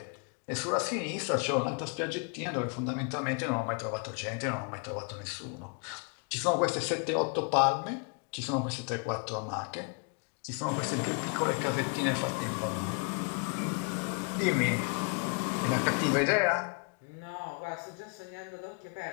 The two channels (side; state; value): right; quieter; 37.2 dB